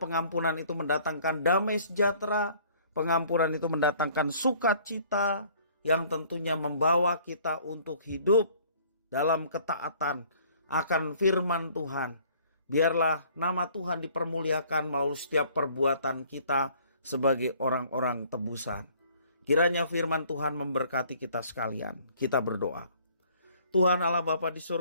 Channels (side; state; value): both; inverted; correlation -0.56